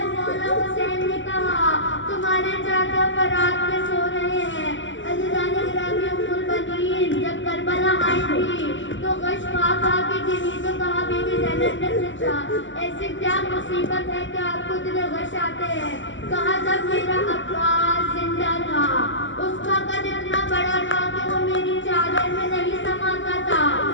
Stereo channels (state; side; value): late; right; 0.55 ms